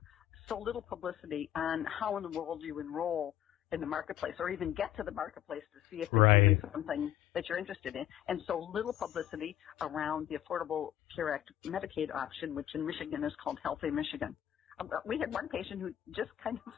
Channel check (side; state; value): right; quieter; 11.7 dB